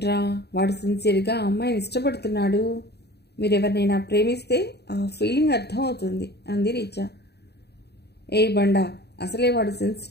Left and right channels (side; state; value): right; late; 0.48 ms